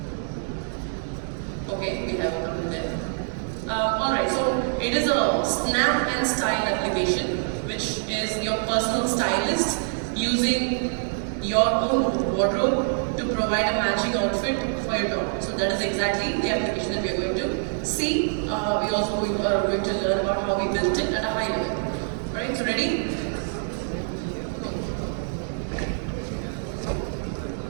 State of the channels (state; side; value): silent; left; digital silence